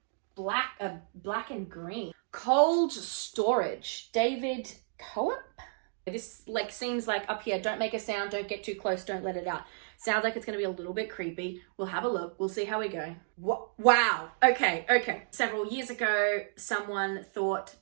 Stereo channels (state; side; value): silent; left; digital silence